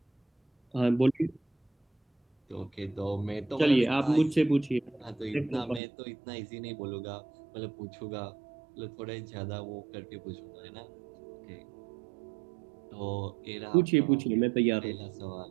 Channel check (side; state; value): left; drops out; at 5.8 s